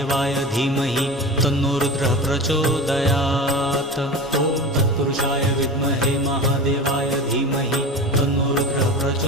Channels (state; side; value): normal; both; correlation 0.31